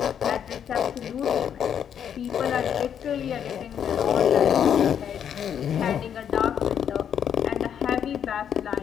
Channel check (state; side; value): quieter; right; 8.7 dB